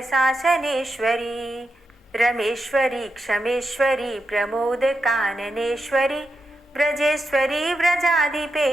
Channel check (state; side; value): normal; both; correlation 0.86